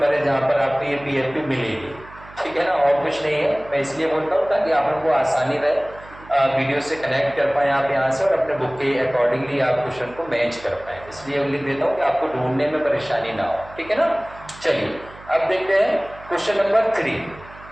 है जहां पर आपको ये पीएफपी मिलेगी। ठीक है ना, और कुछ नहीं है। मैं इसलिए बोलता हूँ ताकि आप लोगों को आसानी रहे, वीडियो से कनेक्ट कर पाए आप यहाँ से और अपने बुक के अकॉर्डिंगली आप क्वेश्चन को मैच कर पाए। इसलिए लिख देता हूँ कि आपको ढूंढने में परेशानी ना हो। ठीक है ना, चलिए अब देखते हैं क्वेश्चन नंबर 3।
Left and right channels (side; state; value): right; noise; hum, 20 dB below the sound